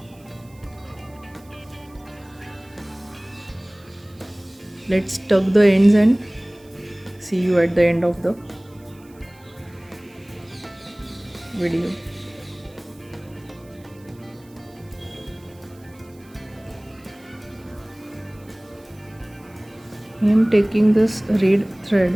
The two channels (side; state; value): right; noise; hiss, 29 dB below the sound